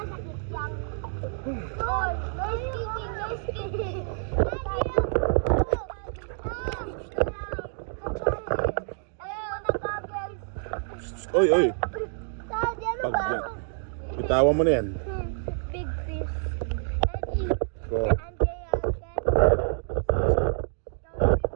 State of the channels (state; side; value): silent; left; digital silence